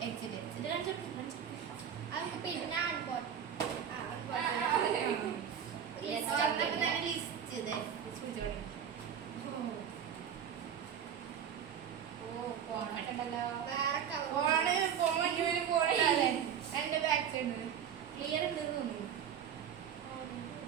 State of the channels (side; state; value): left; quieter; 8.5 dB